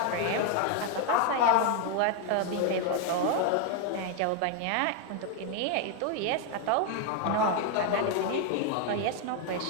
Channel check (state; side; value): different; both; correlation 0.01